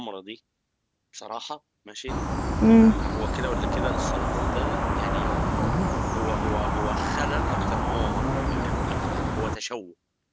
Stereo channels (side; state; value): both; identical; correlation 1.00